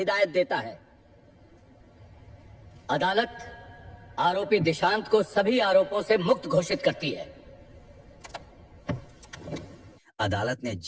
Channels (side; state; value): both; identical; correlation 1.00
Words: देता है। अदालत आरोपी दिशांत को सभी आरोपों से मुक्त घोषित करती है। अदालत ने